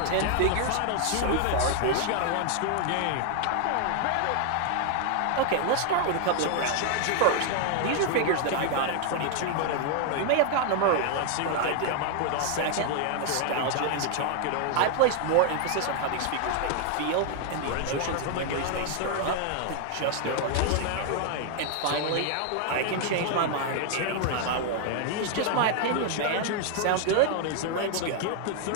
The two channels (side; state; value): both; different; correlation 0.00